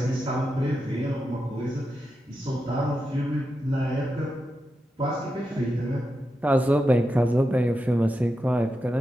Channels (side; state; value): both; normal; correlation 0.88